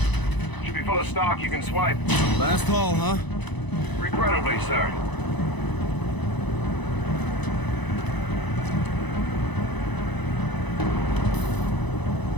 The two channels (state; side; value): late; right; 1.0 ms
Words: Should be full of stock you can swipe. Last haul, huh? Regrettably, sir.